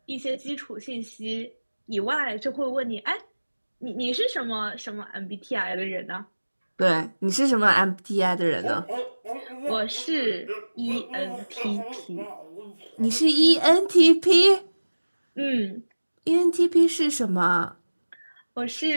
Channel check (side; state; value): both; inverted; correlation -1.00